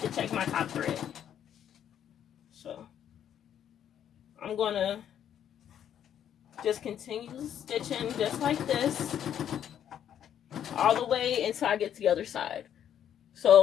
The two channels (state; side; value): quieter; right; 9.7 dB